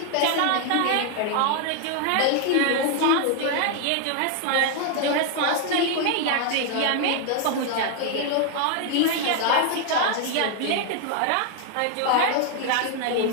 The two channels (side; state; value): both; different; correlation 0.00